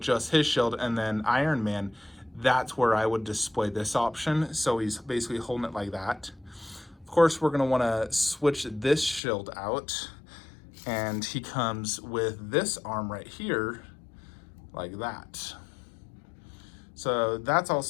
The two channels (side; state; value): right; drops out; at 9.2 s